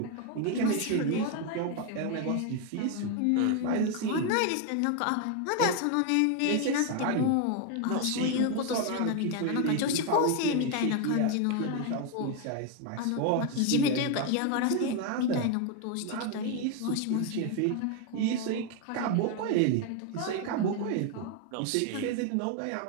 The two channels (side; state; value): both; different; correlation 0.01